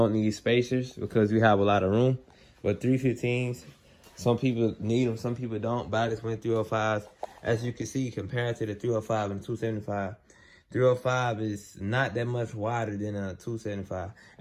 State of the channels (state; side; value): identical; both; correlation 1.00